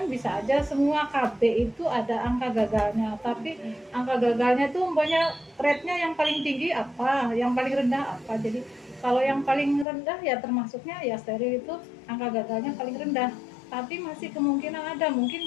bisa aja semua KB itu ada angka gagalnya, tapi angka gagalnya itu umpamanya rate-nya yang paling tinggi apa, yang paling rendah apa. Jadi kalau yang paling rendah ya termasuknya ya steril itu angka gagalnya paling rendah. Tapi masih kemungkinan ada, mungkin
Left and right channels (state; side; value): drops out; right; at 9.9 s